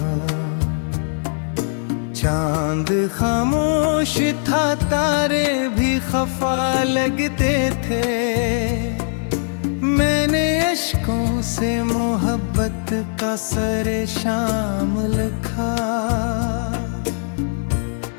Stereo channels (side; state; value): right; silent; digital silence